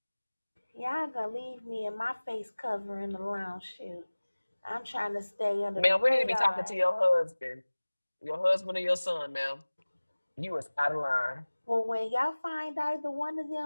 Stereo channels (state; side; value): inverted; both; correlation -1.00